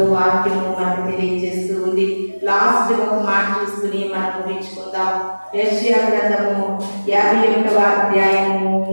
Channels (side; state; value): both; inverted; correlation -1.00